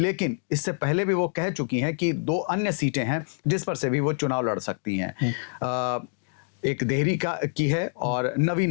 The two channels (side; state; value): right; silent; digital silence